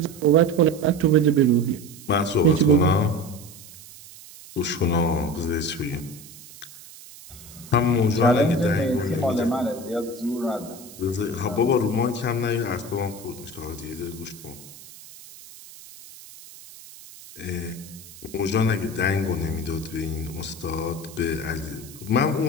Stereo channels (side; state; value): right; noise; hiss, 18 dB below the sound